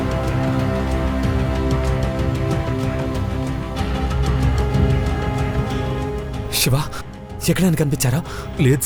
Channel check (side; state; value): both; identical; correlation 1.00